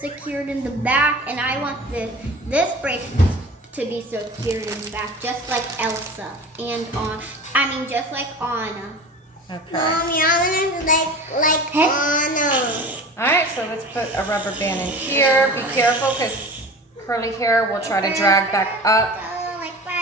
secured in the back, and I want this braid to be secured in the back, just like Elsa and just like Anna. Okay. Mommy, I want to like Anna. All right, so let's put a rubber band in here. Be careful because curly hair will try to drag back up. Oh, like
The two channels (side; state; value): both; normal; correlation 0.36